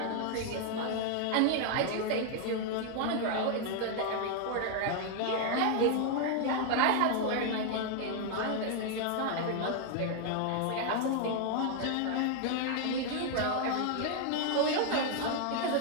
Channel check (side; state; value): both; different; correlation 0.00